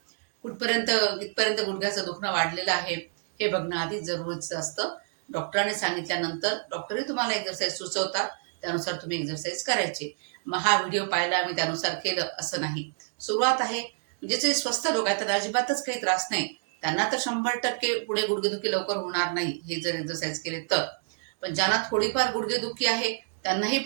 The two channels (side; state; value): left; silent; digital silence